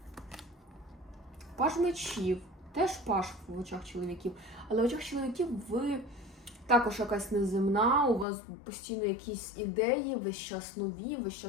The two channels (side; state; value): right; drops out; at 8.2 s